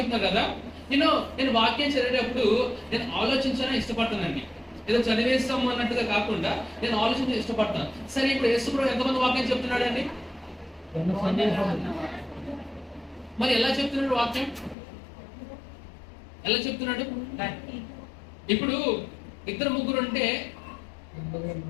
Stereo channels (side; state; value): right; drops out; at 14.8 s